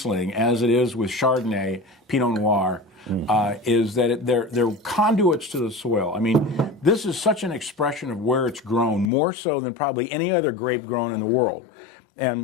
as it is with Chardonnay, Pinot Noir, is that they're conduits to the soil. I mean, this is such an expression of where it's grown, more so than probably any other grape grown in the world.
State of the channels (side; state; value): right; drops out; at 9.1 s